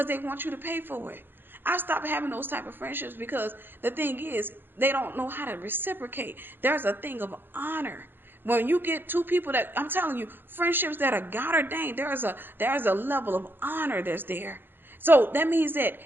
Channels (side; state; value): left; late; 0.10 ms